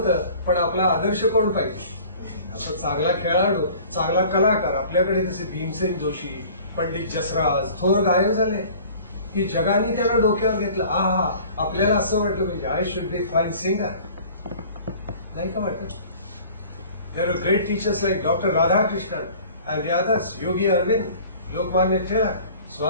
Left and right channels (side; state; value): both; inverted; correlation -0.47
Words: पण आपला आदर्श कोण पाहिजे? असं चांगला खेळाडू, चांगला कलाकार. आपल्याकडे कसे भीमसेन जोशी, पंडित जसराज, थोर गायक झाले की जगाने त्याला डोक्यावर घेतलं. आपल्याला असं म्हटलं पाहिजे, I should be fine singer. नाही का वाटत? There are great teachers like doctor Radhakrishnan and the others, Yogi Aurobindo, Lokmanya Tilak,